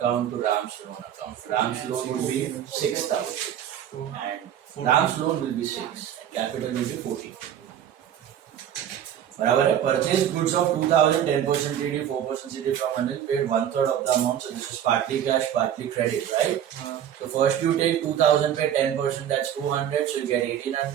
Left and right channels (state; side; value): quieter; left; 10.1 dB